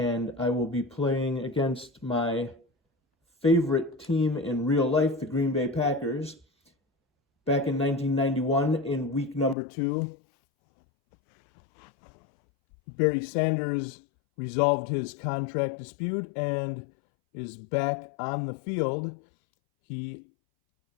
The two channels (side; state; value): right; drops out; at 9.6 s